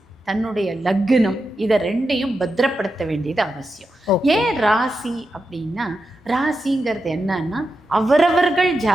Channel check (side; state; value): both; normal; correlation 0.88